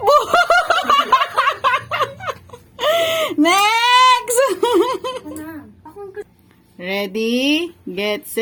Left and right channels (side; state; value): both; identical; correlation 1.00